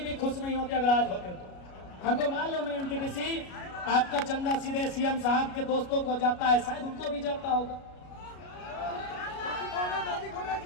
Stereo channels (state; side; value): late; right; 33 ms